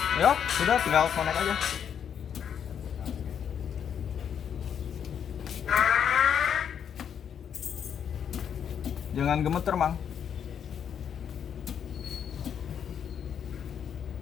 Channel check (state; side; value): quieter; right; 8.2 dB